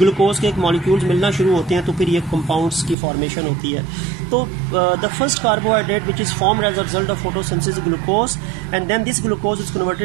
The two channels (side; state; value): left; drops out; at 3.0 s